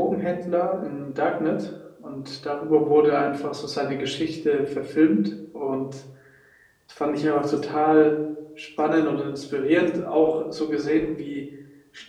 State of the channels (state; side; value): identical; both; correlation 1.00